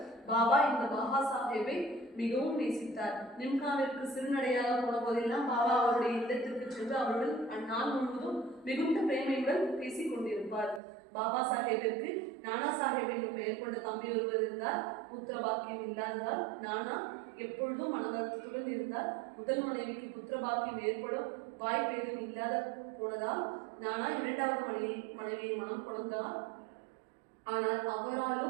பாபா இந்த பாபா சாஹேபை மிகவும் நேசித்தார். நிம்கானிற்கு சிறுநடையாக போன போதெல்லாம் பாபா அவருடைய இல்லத்திற்கு சென்று அவருடன் அந்நாள் முழுவதும் மிகுந்த பிரேமையுடன் பேசிக் கொண்டிருப்பார். பாபா சாஹேபிற்கு நானா சாஹேப் என்று பெயர் கொண்ட தம்பி ஒருவர் இருந்தார். புத்திர பாக்கியம் இல்லாததால் நானா எப்பொழுதும் மனவருத்தத்துடன் இருந்தார். முதல் மனைவிக்கு புத்திர பாக்கியம் ஏற்படும் வாய்ப்பு ஏதும் இல்லாத போனதால் நானா 2வது மனைவியை மனம் கொண்டார். ஆனால்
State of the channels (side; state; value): left; drops out; at 10.8 s